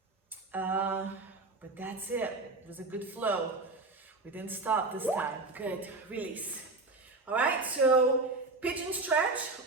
But that's it. It was a good flow. We didn't stop this time. Good. Release. All right, so pigeon stretch,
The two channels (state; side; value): quieter; left; 3.4 dB